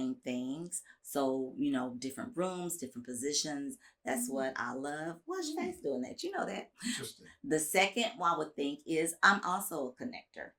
things. So, different rooms, different positions. That's what I love. What's your face doing that? You know that. Interesting. The second one I would think is I'm also a connector.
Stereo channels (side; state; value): both; identical; correlation 1.00